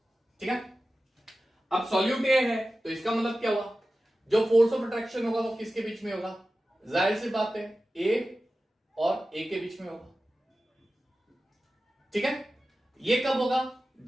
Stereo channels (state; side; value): normal; both; correlation 0.94